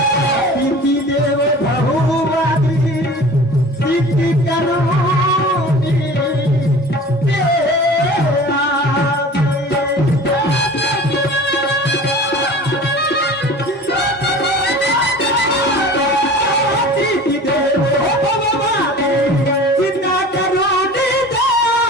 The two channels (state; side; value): normal; both; correlation 0.40